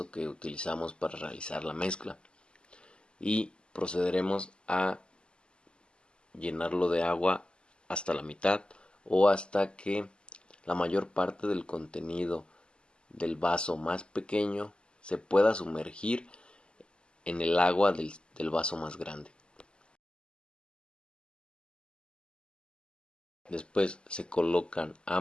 que utilizamos para realizar la mezcla, y procederemos a llenarlo de agua hasta la mitad o hasta que la mayor parte del contenido del vaso más pequeño se pueda sumergir en el agua del vaso más grande. Después se colocan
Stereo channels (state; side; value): late; right; 0.050 ms